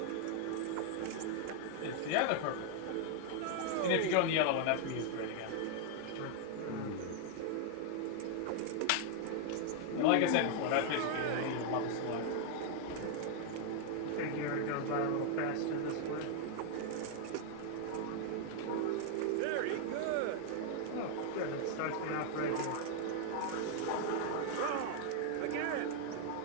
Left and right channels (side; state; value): both; different; correlation 0.00